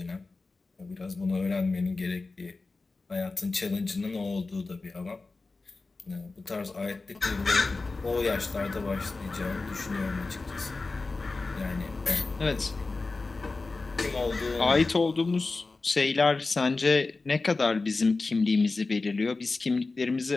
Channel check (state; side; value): quieter; right; 3.7 dB